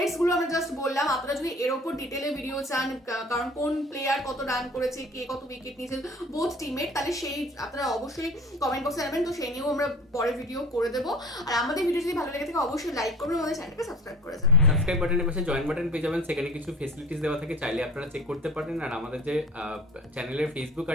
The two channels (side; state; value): both; normal; correlation 0.44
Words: গুলো আমরা জাস্ট বললাম, আপনারা যদি এর উপর ডিটেলে ভিডিও চান কারণ কোন প্লেয়ার কত রান করেছে, কে কত উইকেট নিয়েছে বোথ টিমের, তাহলে সেই আপনারা অবশ্যই কমেন্ট বক্সে জানাবেন, তো সেই নিয়েও আমরা পরে ভিডিও করে দেবো। আর আমাদের ভিডিও যদি ভালো লেগে থাকে অবশ্যই লাইক করবেন, আমাদের চ্যানেলকে সাবস্ক্রাইব করে যাবেন। সাবস্ক্রাইব বাটনের পাশে জয়েন বাটন পেয়ে যাবেন, সেখানে কিছু ফেসিলিটিস দেওয়া থাকে, চাইলে আপনারা চেক করতে পারেন। আর আমাদের যে চ্যানেলের ফেসবুক